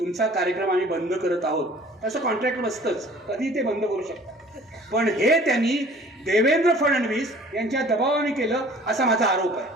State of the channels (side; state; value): both; normal; correlation 0.50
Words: कार्यक्रम आम्ही बंद करत आहोत. तसं कॉन्ट्रॅक्ट बसतंच, कधी ते बंद करू शकतात. पण हे त्यांनी देवेंद्र फडणवीस यांच्या दबावाने केलं असा माझा आरोप आहे.